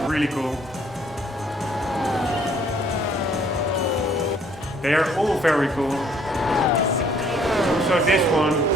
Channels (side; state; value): both; normal; correlation 0.62